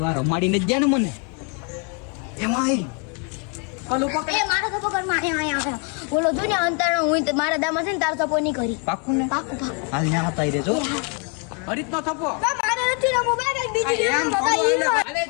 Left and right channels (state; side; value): quieter; right; 37.1 dB